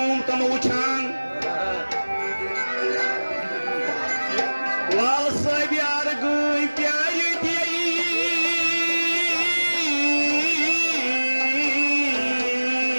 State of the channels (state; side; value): inverted; both; correlation -1.00